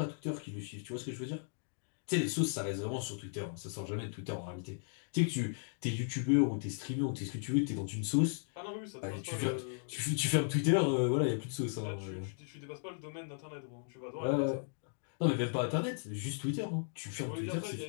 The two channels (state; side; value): silent; right; digital silence